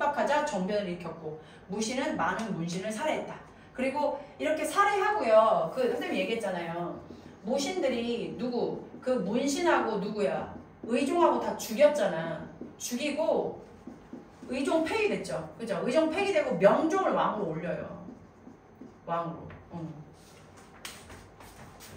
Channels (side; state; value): both; identical; correlation 1.00